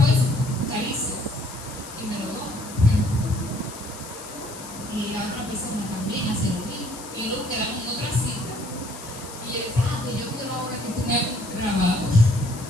es carísimo. Y me lo doy. Y la otra persona también hace lo mismo. Y luego quedamos en otra cita. Y yo decía, pues yo quiero ahora que tú me hagas un trabajo.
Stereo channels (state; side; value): noise; left; hiss, 14 dB below the sound